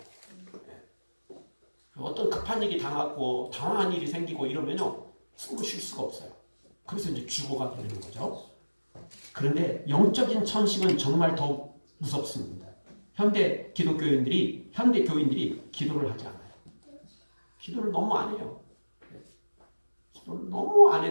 어떤 급한 일이 당하고 당황한 일이 생기고 이러면요 숨을 쉴 수가 없어요. 그래서 이제 죽어가 되는 거죠. 그런데 영적인 천식은 정말 더 무섭습니다. 현대 교인들이 기도를 하지 않아요. 기도를 너무 안 해요. 기도를 너무 안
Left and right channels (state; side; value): inverted; both; correlation -1.00